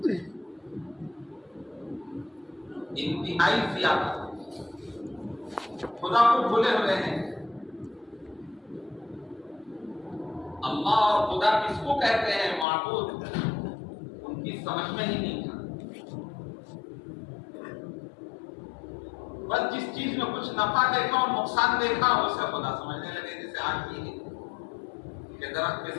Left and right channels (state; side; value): drops out; right; at 12.7 s